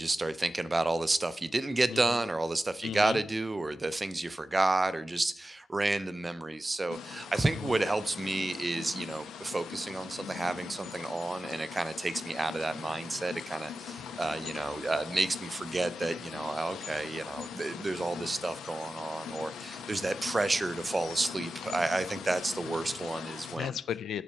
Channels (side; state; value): both; normal; correlation 0.94